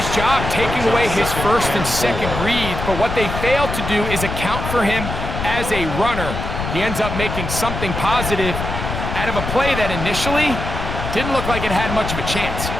job taking away his first and second read, but what they fail to do is account for him as a runner. He ends up making something positive out of a play that initially didn't look like it had much of a chance.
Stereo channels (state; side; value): noise; left; rumble, 5 dB below the sound